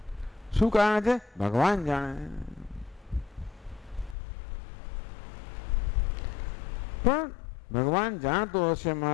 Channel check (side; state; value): right; drops out; at 4.2 s